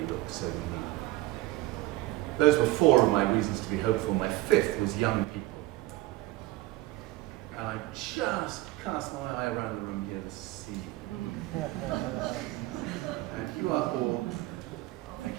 looks, so we need it. Those were 4 of my reasons to be hopeful. My 5th was young people. And I just cast my eye around the room here to see. And you are all, thank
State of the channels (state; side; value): quieter; left; 17.1 dB